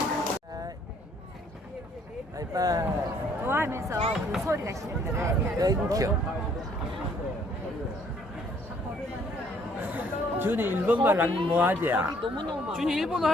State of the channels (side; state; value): both; normal; correlation 0.63